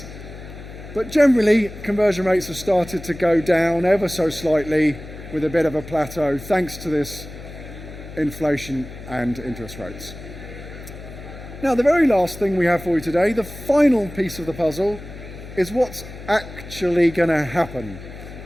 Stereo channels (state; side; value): noise; left; hum, 14 dB below the sound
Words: But generally, conversion rates have started to go down ever so slightly with a bit of a plateau, thanks to this inflation and interest rates. Now, the very last thing we have for you today, the final piece of the puzzle, is what's actually going to happen